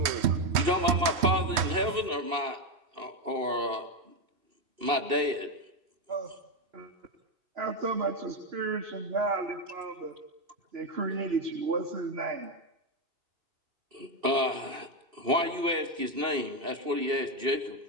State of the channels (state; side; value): late; left; 3.1 ms